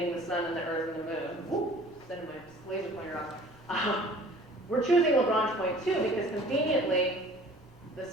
the sun and the Earth and the moon. Whoop, sending my laser pointer off. We're choosing Lagrange point 2 because conveniently the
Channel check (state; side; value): normal; both; correlation 0.49